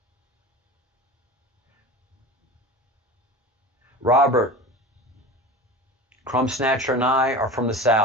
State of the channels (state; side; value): normal; both; correlation 0.33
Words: Robert, Crumb Snatcher and I are from the